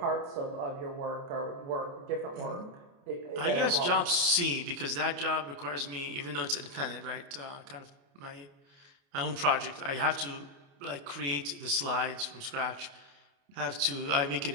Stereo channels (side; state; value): left; late; 29 ms